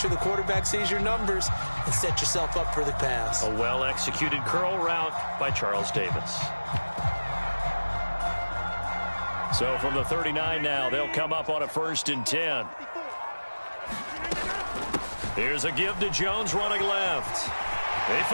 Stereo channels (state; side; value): inverted; both; correlation -1.00